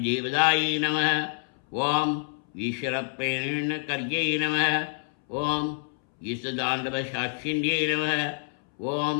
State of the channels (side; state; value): right; silent; 60 dB below the other